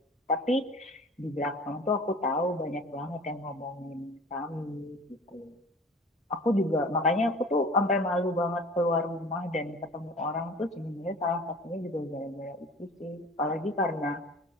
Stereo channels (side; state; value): both; normal; correlation 0.42